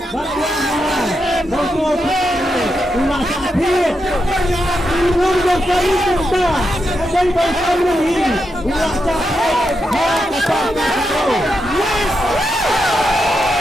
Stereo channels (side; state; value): both; normal; correlation 0.85